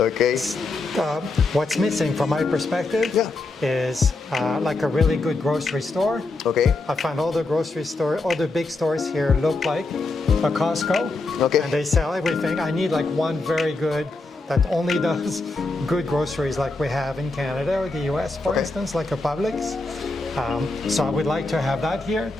What's missing from my perspective Yeah. is like a really good grocery store. Okay. I find all the big stores here look like a Costco. Okay. And they sell everything. I need like one very good that only does good groceries like we have in Canada or the US, for instance, like a Publix. So I would like to have that here.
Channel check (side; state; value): right; quieter; 3.3 dB